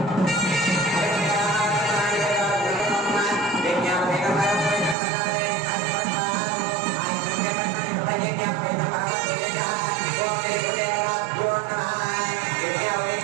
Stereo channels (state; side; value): drops out; left; at 5.0 s